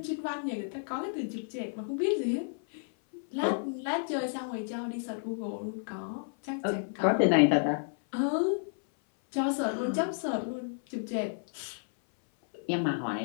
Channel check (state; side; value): silent; right; 57 dB below the other